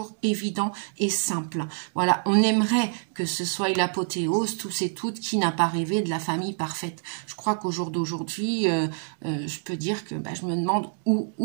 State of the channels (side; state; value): left; silent; digital silence